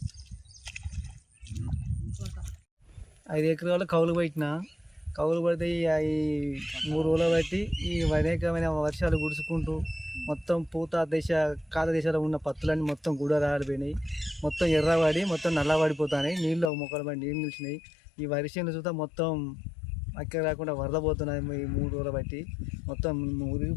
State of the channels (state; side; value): drops out; right; at 16.7 s